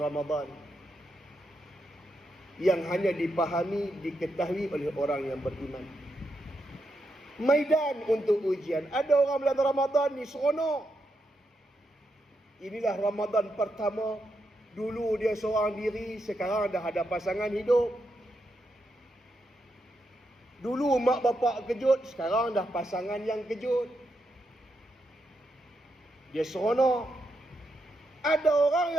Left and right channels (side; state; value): both; normal; correlation 0.83